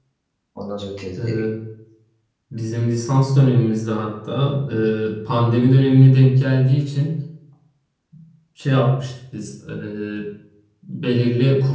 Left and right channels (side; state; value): both; identical; correlation 1.00